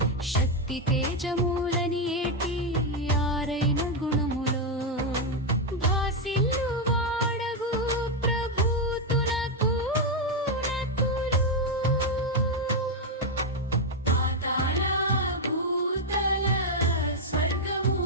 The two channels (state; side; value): normal; both; correlation 0.02